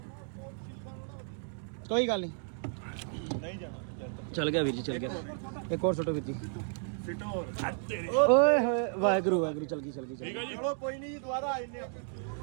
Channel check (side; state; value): left; silent; 56 dB below the other